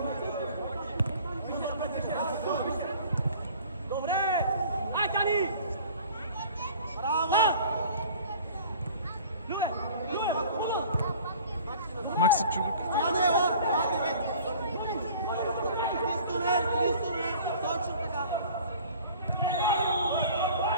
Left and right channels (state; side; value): inverted; both; correlation -0.47